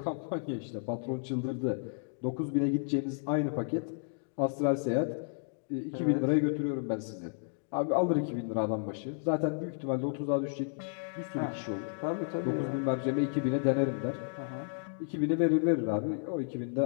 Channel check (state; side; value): silent; right; digital silence